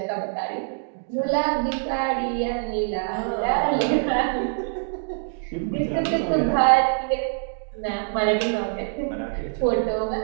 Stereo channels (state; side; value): silent; left; digital silence